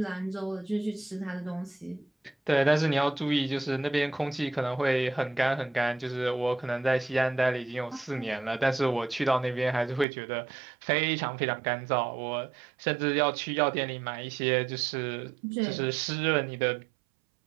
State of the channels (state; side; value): drops out; left; at 10.1 s